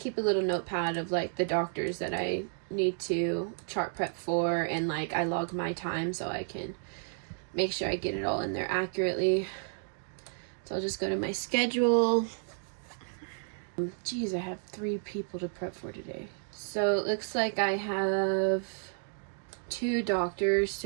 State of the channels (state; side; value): silent; left; digital silence